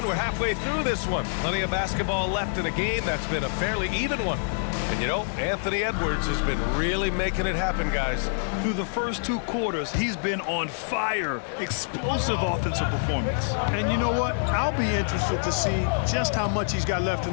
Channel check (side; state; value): right; silent; 60 dB below the other